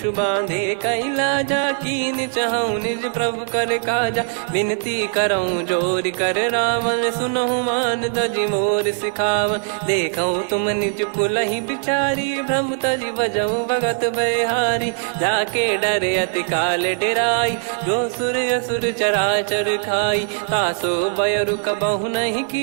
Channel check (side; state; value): left; silent; 62 dB below the other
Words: बांधे कैलाजा, कीन चाहूँ निज प्रभु कर काजा। विनती करऊँ जोर कर रावण, सुनहु मान तजि मोर सिखावन। देखऊँ तुम निज पुलहि बिचारी, भ्रम तजि बजऊँ भगत बहारी। जाके डरे अति काल डेराई, जो सुर असुर चराचर खाई। तासो बयरु कबहु नहीं